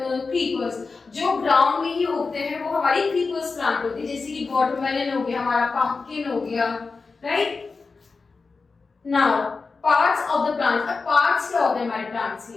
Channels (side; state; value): right; quieter; 4.3 dB